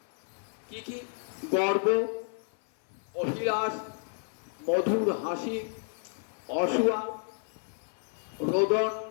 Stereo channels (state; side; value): silent; right; 56 dB below the other